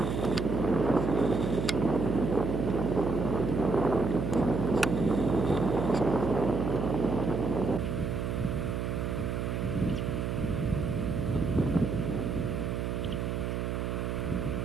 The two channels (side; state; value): right; noise; hum, 1 dB below the sound